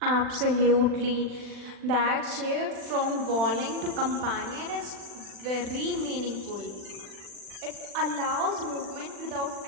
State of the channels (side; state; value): left; late; 40 ms